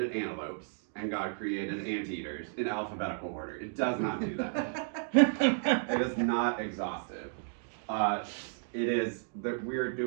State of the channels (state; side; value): silent; left; digital silence